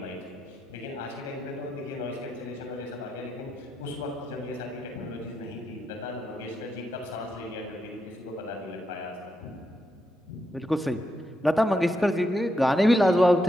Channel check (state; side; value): normal; both; correlation 0.82